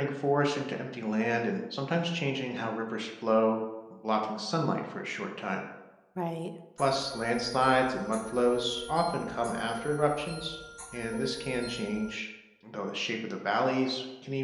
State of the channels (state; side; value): identical; both; correlation 1.00